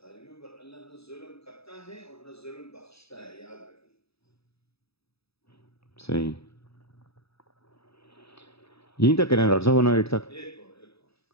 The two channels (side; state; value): right; late; 0.77 ms